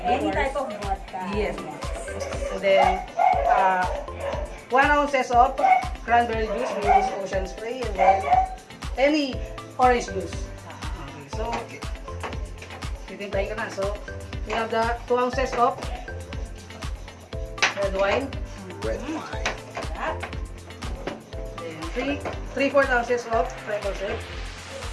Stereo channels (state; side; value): identical; both; correlation 1.00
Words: Any type of vodka. Yes, ma'am. And then, 1 ounces of cranberry juice. We use ocean spray. And then, any orange juice. Okay, so, titimpay ka na. So, we have the 2 ounces of red wine. Red wine. Then, 3/4 ounces of triple sec.